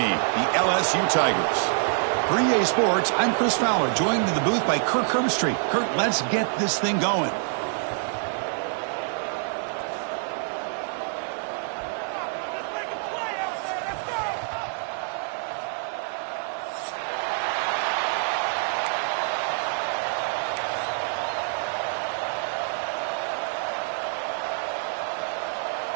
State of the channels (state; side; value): silent; left; 58 dB below the other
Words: the LSU Tigers. For EA Sports, I'm Chris Fowler, joined in the booth by Kirk Herbstreit. Kirk, let's get this thing going.